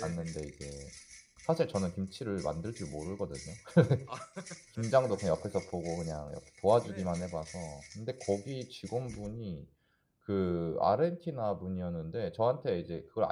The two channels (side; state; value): both; identical; correlation 1.00